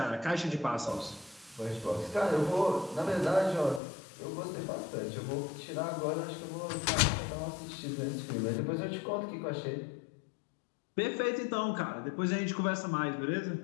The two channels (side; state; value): right; drops out; at 3.8 s